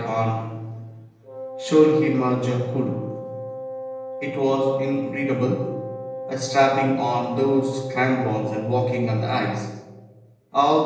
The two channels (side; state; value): both; identical; correlation 1.00